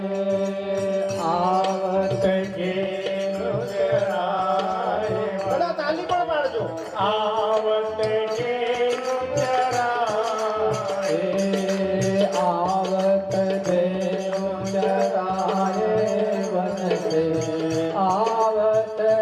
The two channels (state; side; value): identical; both; correlation 1.00